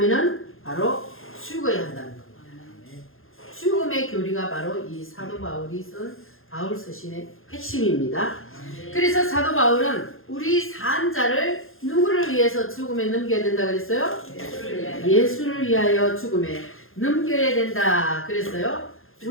바로 죽어야 한다는 겁니다. 죽음의 교리가 바로 이 사도 바울이 쓴 바울 서신의 핵심입니다. 그래서 사도 바울은 우리 산자를 누구를 위해서 죽음에 넘겨야 된다 그랬어요? 예수를 위하여 죽음에 넘겨야 된다 그랬어요.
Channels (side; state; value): right; late; 0.60 ms